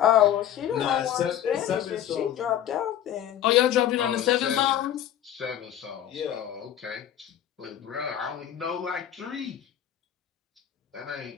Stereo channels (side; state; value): right; quieter; 10.8 dB